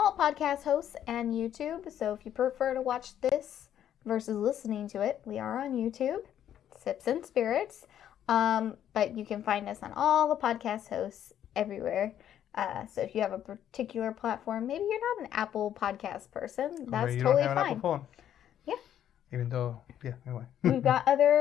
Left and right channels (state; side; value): quieter; right; 10.5 dB